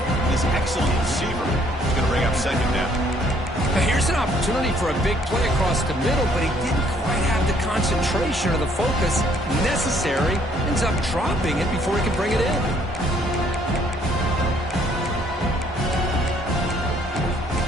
this excellent receiver. He's going to bring up second down. Now here's an opportunity for a big play across the middle, but he didn't quite have the concentration or the focus necessary. Ends up dropping it before he can bring it in.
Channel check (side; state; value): both; normal; correlation 0.64